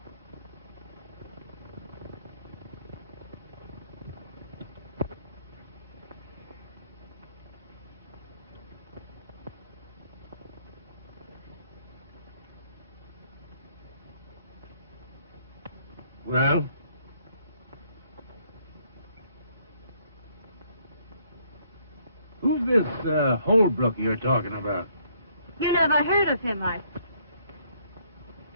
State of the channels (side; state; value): both; inverted; correlation -0.68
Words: Well? Who's this Holbrook you're talking about? You never heard of him,